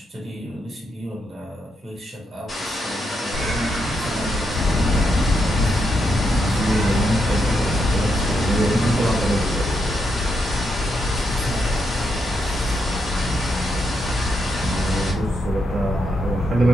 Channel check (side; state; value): both; normal; correlation 0.81